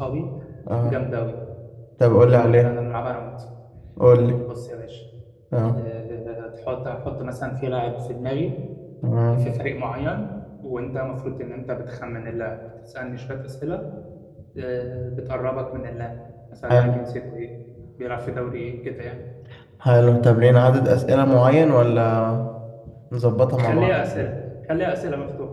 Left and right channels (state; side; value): identical; both; correlation 1.00